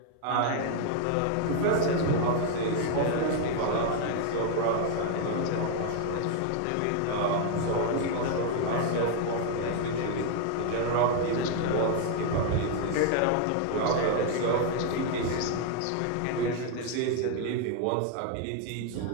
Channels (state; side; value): different; both; correlation 0.00